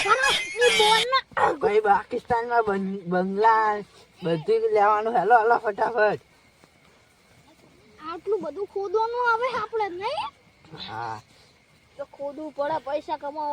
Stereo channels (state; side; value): identical; both; correlation 1.00